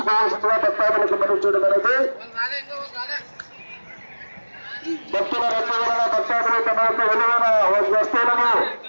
భక్తాదులకు మనం చేయడం అనేది భక్తుల రద్దు వలన భక్తాదులు తమ యొక్క విలువైన వస్తువులను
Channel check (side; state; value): both; inverted; correlation -1.00